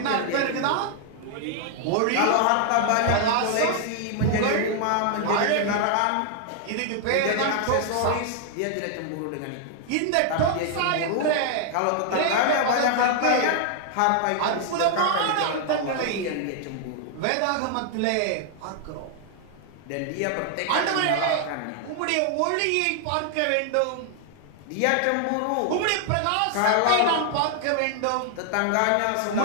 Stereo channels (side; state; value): both; different; correlation 0.00